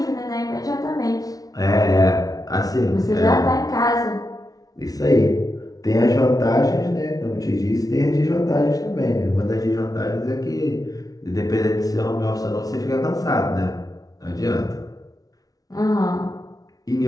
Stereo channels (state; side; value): late; right; 0.18 ms